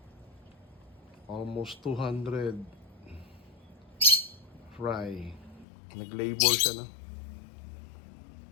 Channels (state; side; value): drops out; right; at 5.7 s